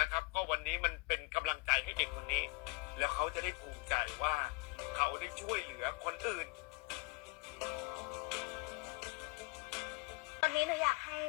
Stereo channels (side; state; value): right; quieter; 29.0 dB